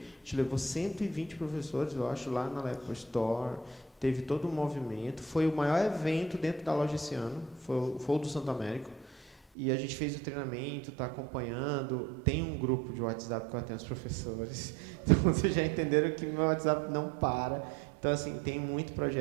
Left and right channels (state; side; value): drops out; left; at 9.3 s